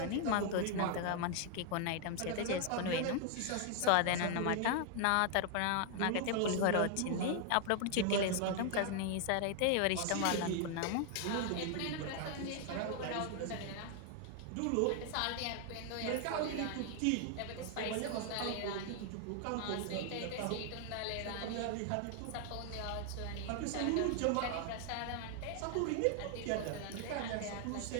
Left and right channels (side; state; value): both; different; correlation 0.00